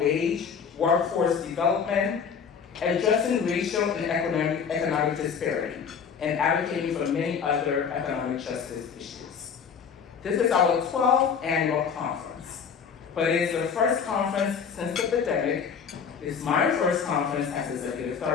workforce development, addressing racial and economic disparity, and advocating for many other economic justice issues. This is our 12th annual conference, but it is the first conference since the pandemic. It's my first conference as Executive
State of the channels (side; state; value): right; quieter; 6.7 dB